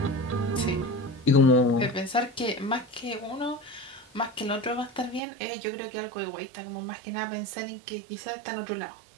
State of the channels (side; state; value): left; drops out; at 5.2 s